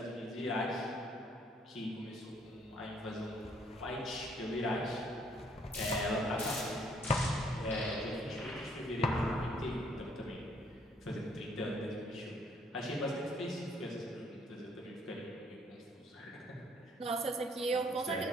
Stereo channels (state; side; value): normal; both; correlation 0.65